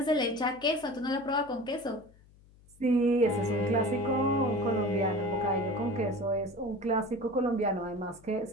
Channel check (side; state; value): left; noise; hum, 27 dB below the sound